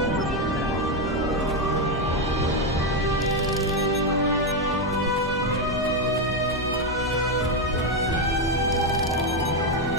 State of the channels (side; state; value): both; normal; correlation 0.06